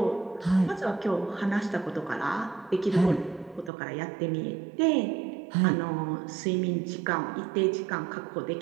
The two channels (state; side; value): drops out; left; at 3.7 s